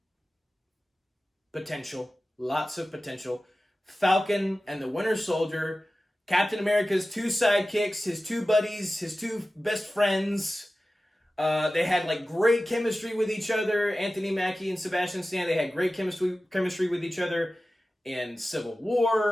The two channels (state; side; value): normal; both; correlation 0.95